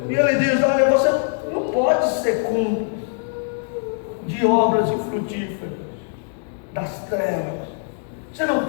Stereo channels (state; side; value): silent; right; 64 dB below the other